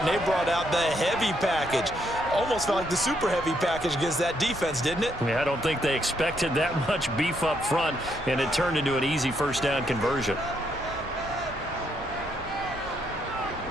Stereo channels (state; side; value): normal; both; correlation 0.75